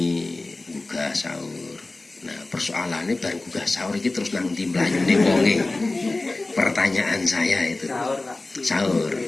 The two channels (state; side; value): quieter; right; 3.1 dB